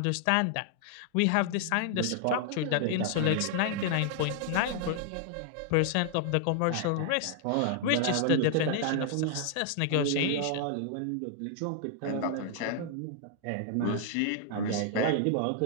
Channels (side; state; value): both; different; correlation 0.00